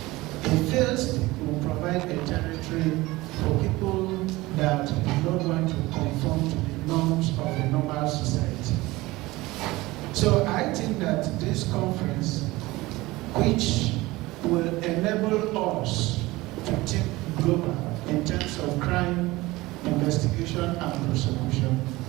a failed state will provide a territory for people that do not want to conform to the norms of the normal society. So I think that this conference, which will enable us to think global in terms of crime, investigation, and prosecution,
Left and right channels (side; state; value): left; quieter; 20.0 dB